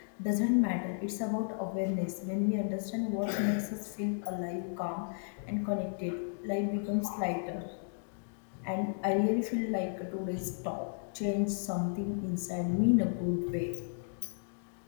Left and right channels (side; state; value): right; silent; digital silence